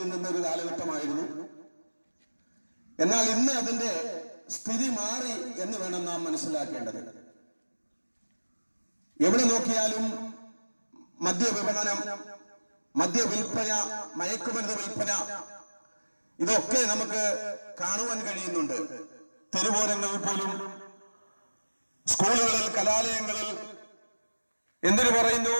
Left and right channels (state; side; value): inverted; both; correlation -1.00